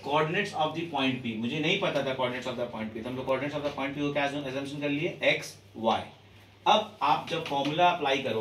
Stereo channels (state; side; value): identical; both; correlation 1.00